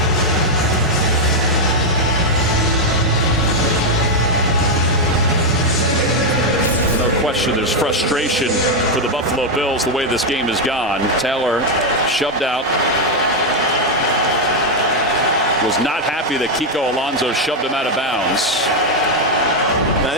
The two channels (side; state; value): both; normal; correlation 0.02